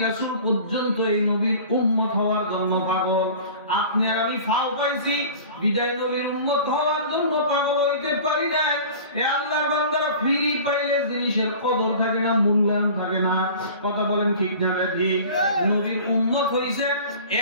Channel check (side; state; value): both; inverted; correlation -0.41